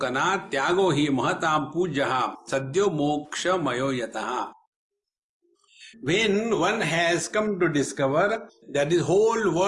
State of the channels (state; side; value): identical; both; correlation 1.00